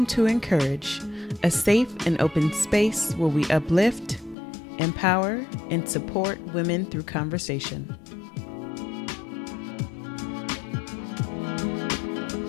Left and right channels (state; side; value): drops out; right; at 4.4 s